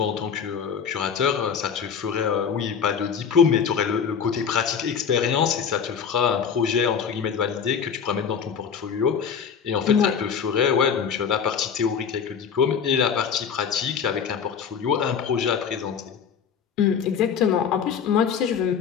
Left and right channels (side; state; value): right; quieter; 7.1 dB